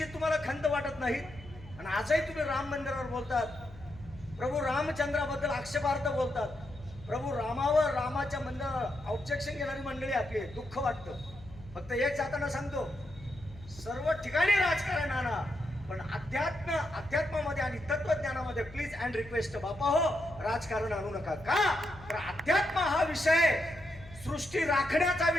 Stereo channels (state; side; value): noise; left; hum, 19 dB below the sound